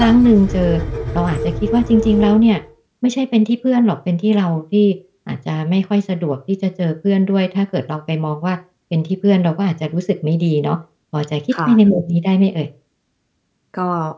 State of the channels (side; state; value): both; identical; correlation 1.00